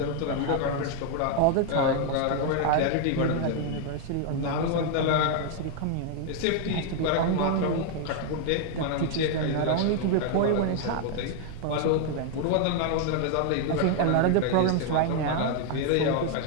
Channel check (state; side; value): different; both; correlation 0.00